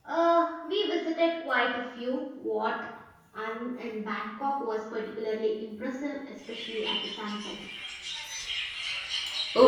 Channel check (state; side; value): identical; both; correlation 1.00